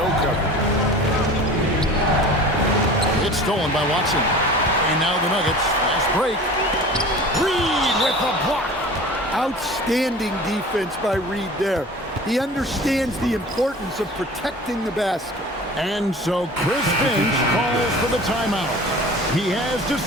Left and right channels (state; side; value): normal; both; correlation 0.40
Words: coverage. It's stolen by Watson. And now the Nuggets, fast break. Reed with the block. Outstanding defense by Reed there. He understands the importance of protecting the basket. And so Chris Finch calls for the timeout. He has